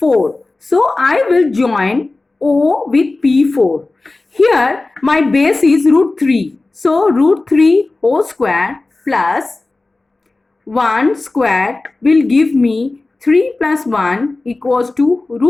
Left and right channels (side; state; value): right; quieter; 3.2 dB